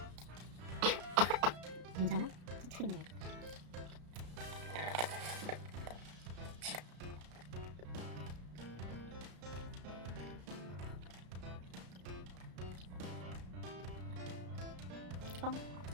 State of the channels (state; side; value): late; left; 33 ms